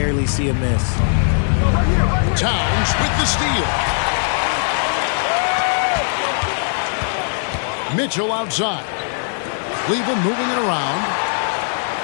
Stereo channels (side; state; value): right; silent; 65 dB below the other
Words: see him miss. Towns with the steal. Mitchell outside. Cleveland moving it around.